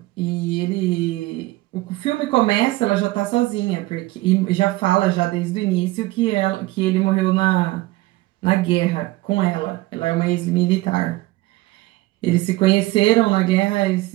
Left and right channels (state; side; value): quieter; left; 19.2 dB